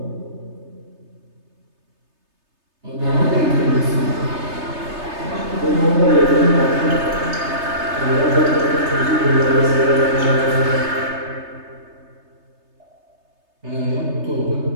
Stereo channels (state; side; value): late; left; 3.3 ms